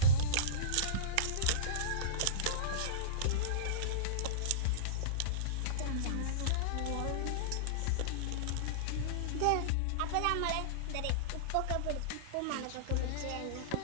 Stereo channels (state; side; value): different; both; correlation -0.04